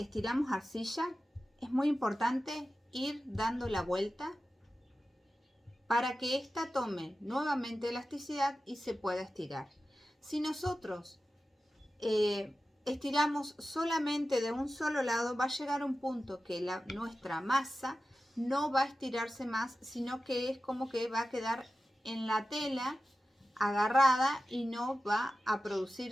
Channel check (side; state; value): both; normal; correlation 0.94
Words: arcilla, es muy importante ir dando la vuelta para que ésta tome nuevamente elasticidad y se pueda estirar. Si nosotros estiramos solamente de un solo lado, va a llegar un punto que nuestra masa no va a estirarse más, sino que es como que va a quedar en la tela agarrada y no va a